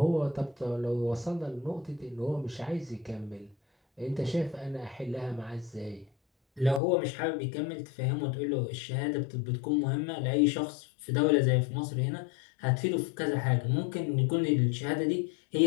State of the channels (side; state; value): right; drops out; at 6.8 s